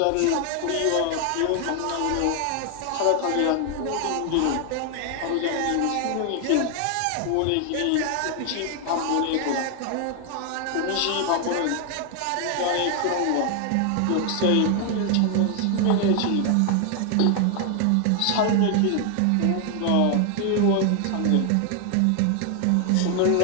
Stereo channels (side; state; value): both; different; correlation 0.00